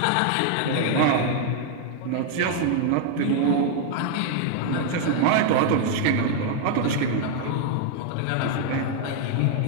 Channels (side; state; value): both; different; correlation 0.00